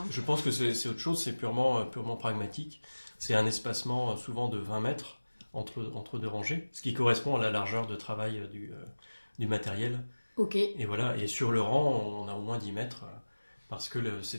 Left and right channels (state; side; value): inverted; both; correlation -1.00